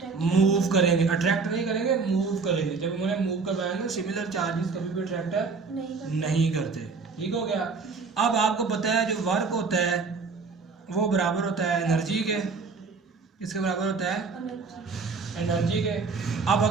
मूव करेंगे, अट्रैक्ट नहीं करेंगे, मूव करेंगे। जब उन्हें मूव करवाएंगे, सिमिलर चार्जेस कभी भी अट्रैक्ट नहीं करते। ठीक हो गया। अब आपको पता है जो वर्क होता है वो बराबर होता है एनर्जी के। किसके बराबर होता है, एनर्जी के। अब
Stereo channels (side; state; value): left; quieter; 4.7 dB